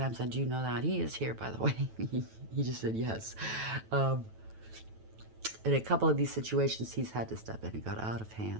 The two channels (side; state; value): left; late; 9.2 ms